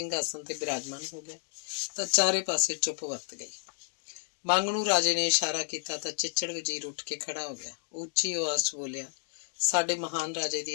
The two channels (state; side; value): silent; right; digital silence